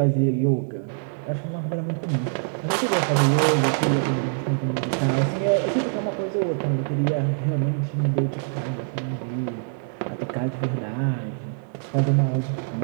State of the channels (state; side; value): silent; left; digital silence